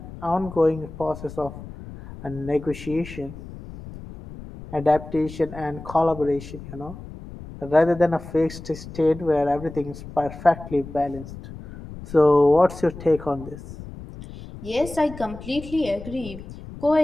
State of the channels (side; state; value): left; noise; rumble, 14 dB below the sound